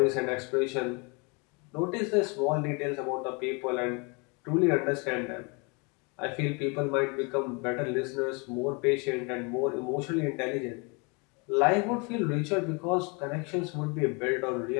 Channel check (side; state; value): right; quieter; 31.5 dB